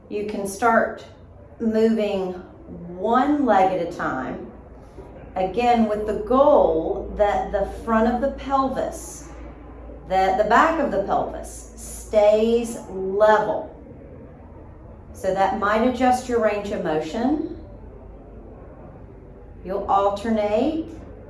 you can start moving one leg at a time. Again, with the goal that the front of the pelvis, that the back of the pelvis stays level. So that might adjust your range of motion. You'll alternate,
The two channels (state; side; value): identical; both; correlation 1.00